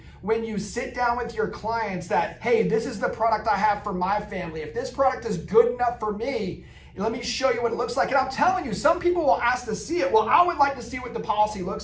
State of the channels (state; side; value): identical; both; correlation 1.00